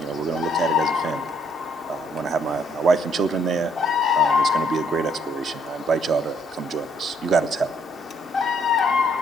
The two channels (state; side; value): normal; both; correlation 0.68